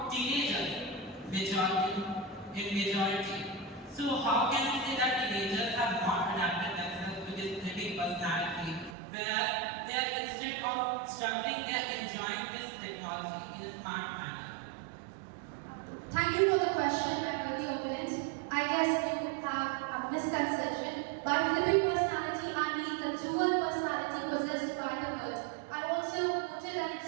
teenagers, majority. So how can we say that teenagers have not adapted themselves to this flipping personality, whereas they are instead of struggling, they are enjoying this technology in a smart manner? Thank you for the question, my worthy opponent. I guess you have a misconception. By flipping personality, I mean the dual personality possessed by the bird. I also quoted an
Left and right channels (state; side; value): drops out; left; at 9.0 s